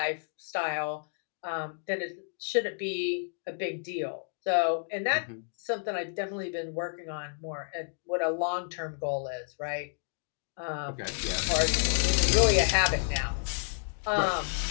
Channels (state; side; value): silent; right; digital silence